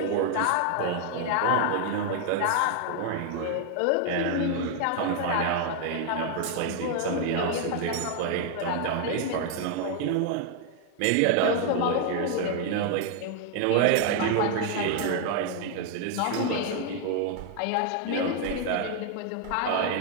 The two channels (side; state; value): both; different; correlation 0.00